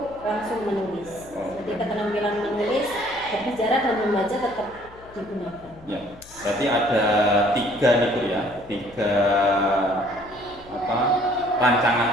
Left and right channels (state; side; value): noise; left; hum, 23 dB below the sound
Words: langsung menulis. Jadi keterampilan menulis, berbicara dan membaca tetap digunakan. Ya, berarti ada tiga nih Bu ya, tiga rancangan